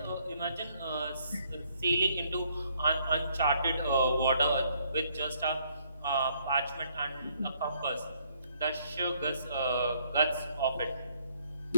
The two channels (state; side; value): inverted; both; correlation -0.67